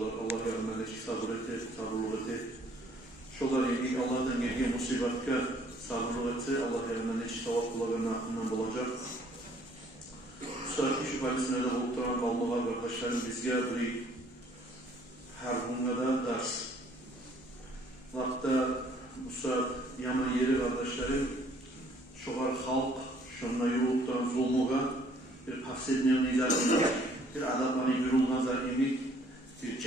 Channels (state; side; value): normal; both; correlation 0.60